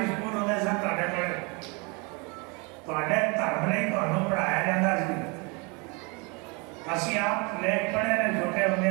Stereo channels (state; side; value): quieter; left; 30.1 dB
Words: स्कूल होते सन धर्म नहीं पढ़ाया जाता सी। असी आप लेख पढ़े ने छोटे होंगे